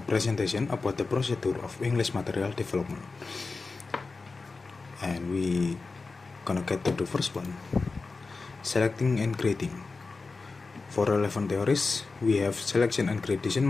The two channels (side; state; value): right; quieter; 4.0 dB